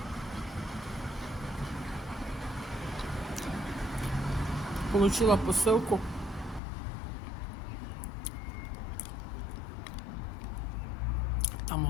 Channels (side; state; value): right; drops out; at 6.6 s